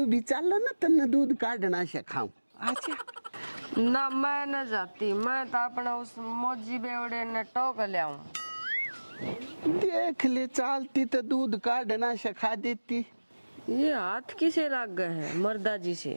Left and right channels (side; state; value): both; inverted; correlation -1.00